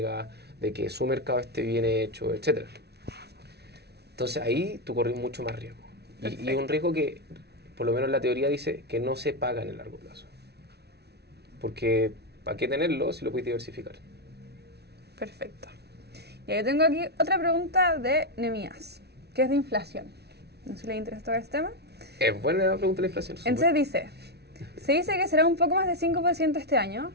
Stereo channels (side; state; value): left; late; 0.48 ms